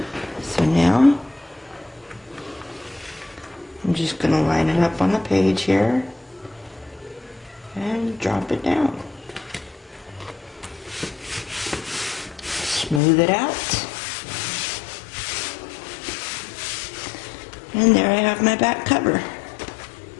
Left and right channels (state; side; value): drops out; right; at 13.0 s